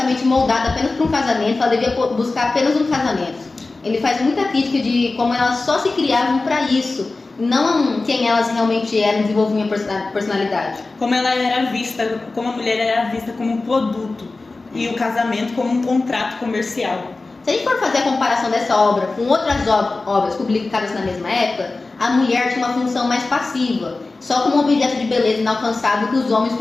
moldada apenas para um casamento, ela devia buscar apenas um casamento. Ele faz muita crítica de como elas só se criavam para isso, não quem elas realmente eram, desenvolviam a personalidade. Como a mulher era vista como um produto e o casamento como um contrato comercial. Se a gente for fazer a comparação dessa obra com outras obras publicadas na mesma época, a mulher tinha uma função mais passiva, só como um objeto de beleza inalcançável que os homens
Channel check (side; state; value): right; quieter; 3.5 dB